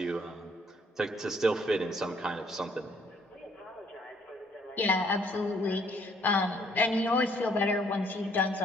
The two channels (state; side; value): normal; both; correlation 0.65